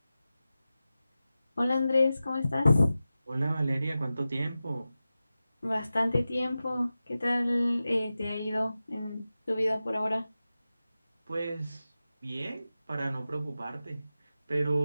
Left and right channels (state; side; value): inverted; both; correlation -0.94